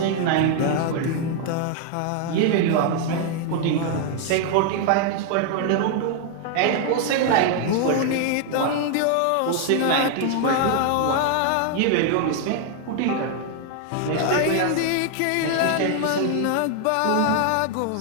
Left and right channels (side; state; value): both; different; correlation 0.00